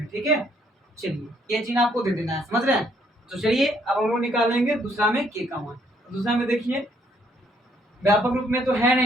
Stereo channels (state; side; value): normal; both; correlation 0.68